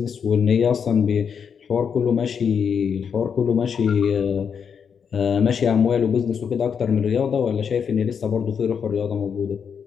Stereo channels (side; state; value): right; quieter; 6.9 dB